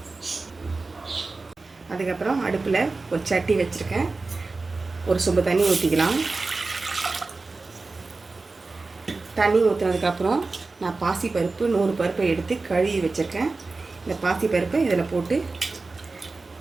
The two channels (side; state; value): left; quieter; 3.7 dB